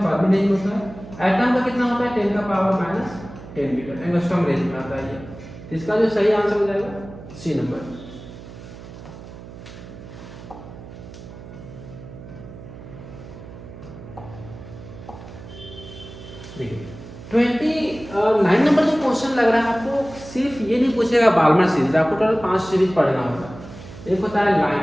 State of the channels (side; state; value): right; noise; hum, 15 dB below the sound